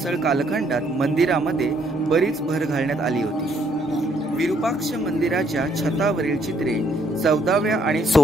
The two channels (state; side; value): normal; both; correlation 0.68